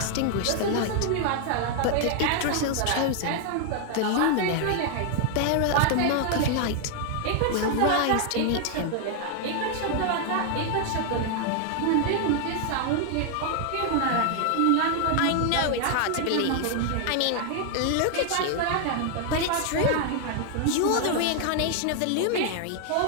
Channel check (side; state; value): both; different; correlation 0.00